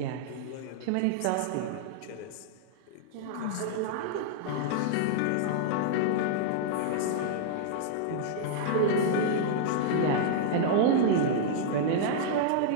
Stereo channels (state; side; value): different; both; correlation -0.01